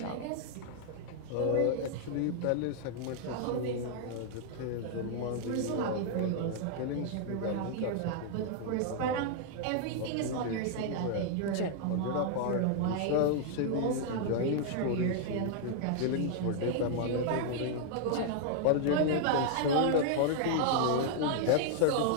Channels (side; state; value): both; different; correlation -0.01